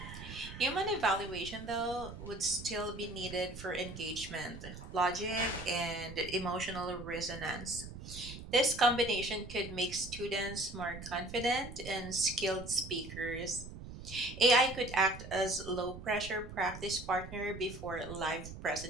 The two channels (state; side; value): noise; right; rumble, 12 dB below the sound